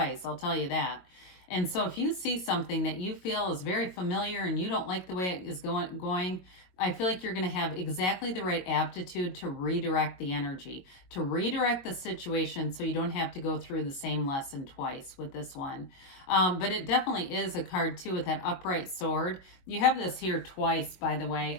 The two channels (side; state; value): right; late; 22 ms